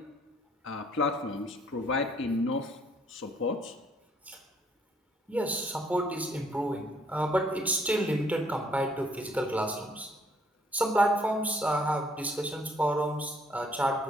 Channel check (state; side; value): normal; both; correlation 0.65